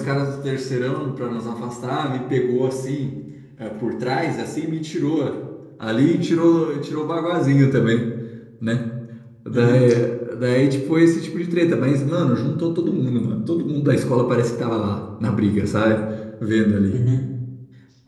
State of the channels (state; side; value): identical; both; correlation 1.00